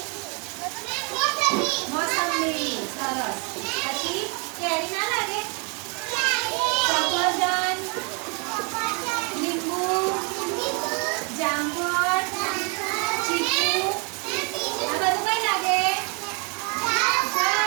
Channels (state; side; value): quieter; left; 34.5 dB